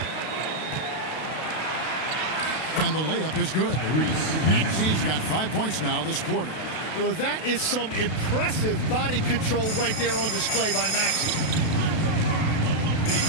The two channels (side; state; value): right; late; 32 ms